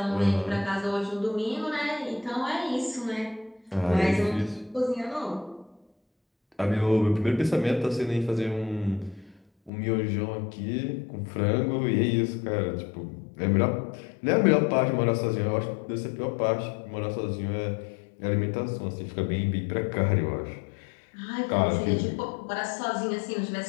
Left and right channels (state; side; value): drops out; right; at 9.7 s